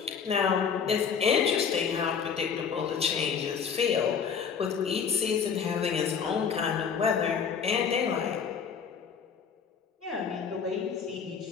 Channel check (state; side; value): quieter; right; 6.7 dB